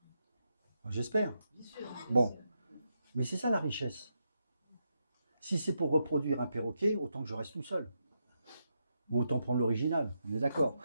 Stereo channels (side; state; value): both; inverted; correlation -0.83